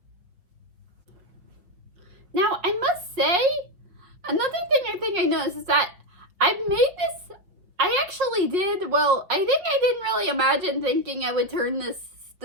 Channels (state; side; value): late; left; 5.4 ms